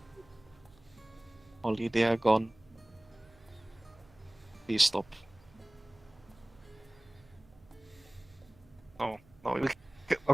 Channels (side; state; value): right; noise; hum, 26 dB below the sound